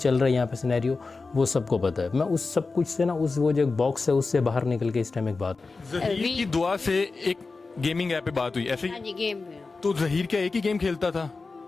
रहा है यहाँ पे सिनेरियो वो सबको पता है। मैं उस सब कुछ से ना उस वो जो एक बॉक्स है उससे बाहर निकल के इस टाइम एक बात ज़हीर की दुआ से एक गेमिंग ऐप पे बात हुई ऐसे ही? हाँ जी, गेम में। तो ज़हीर क्या एक ही गेम खेलता था?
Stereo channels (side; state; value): right; quieter; 4.0 dB